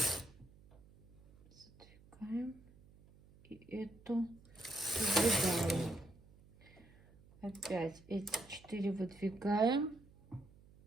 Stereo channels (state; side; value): noise; right; hum, 25 dB below the sound